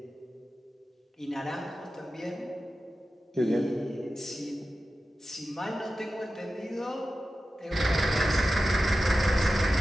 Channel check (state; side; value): normal; both; correlation 0.93